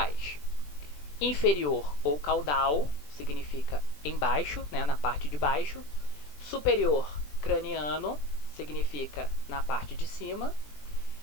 Inferior ou caudal significa embaixo, né, na parte de baixo. Superior, craniano, significa na parte de cima.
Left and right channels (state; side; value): late; right; 20 ms